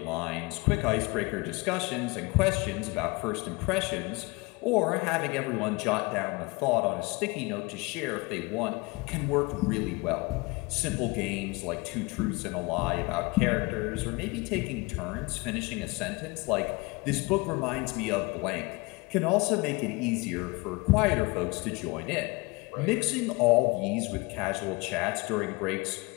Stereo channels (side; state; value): right; quieter; 25.4 dB